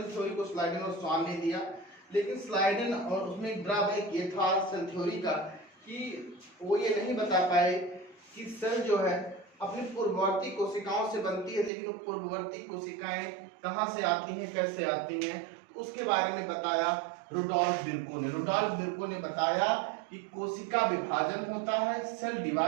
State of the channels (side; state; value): left; drops out; at 11.7 s